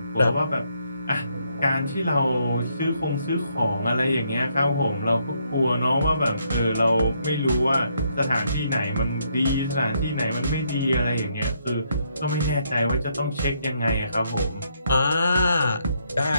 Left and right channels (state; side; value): inverted; both; correlation -0.74